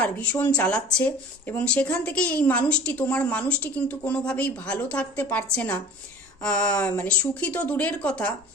ভীষণ চালাচ্ছে। এবং সেখান থেকেই এই তোমার মানুষটি কিন্তু কোনোভাবেই ভালো থাকতে পারছে না, সুখী তো দূরের কথা,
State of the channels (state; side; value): noise; left; rumble, 30 dB below the sound